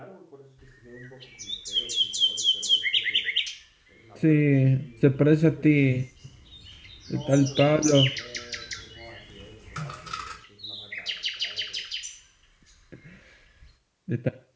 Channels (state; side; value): identical; both; correlation 1.00